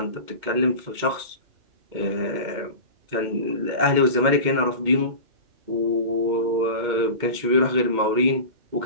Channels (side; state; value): left; late; 2.2 ms